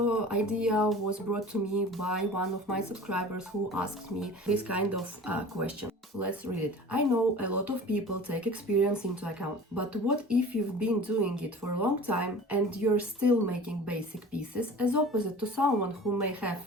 idea was brought to me by one of my subscribers who asked me this kind of question. Let's read it. I know a lot of people take experience into account, but what if you've been doing it for a long time and you're still making basic pieces, as opposite to someone who may have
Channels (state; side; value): normal; both; correlation 0.41